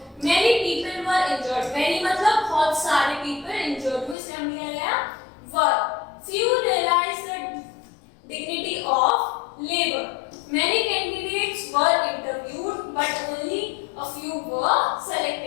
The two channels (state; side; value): drops out; right; at 4.2 s